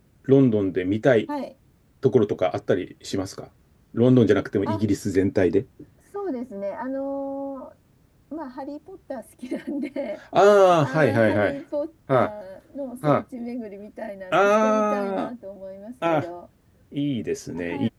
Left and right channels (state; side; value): identical; both; correlation 1.00